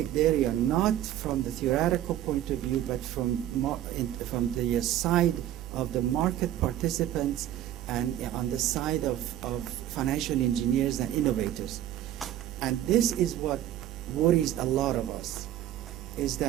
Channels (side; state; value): left; quieter; 12.3 dB